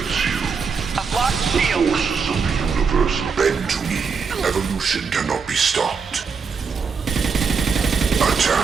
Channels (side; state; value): left; quieter; 5.5 dB